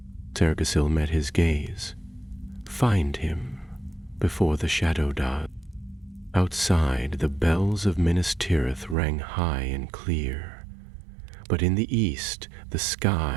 Cerdaisil met his gaze. "Find him, before the shadow does." Outside, the bells of Minas Tirith rang high and clear, but in the east the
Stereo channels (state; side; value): drops out; left; at 9.0 s